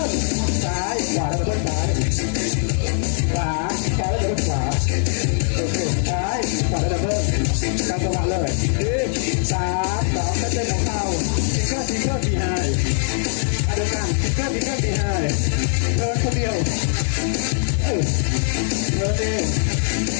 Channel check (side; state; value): right; silent; digital silence